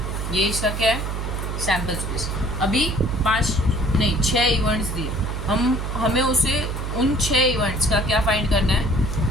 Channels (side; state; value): right; noise; hum, 3 dB below the sound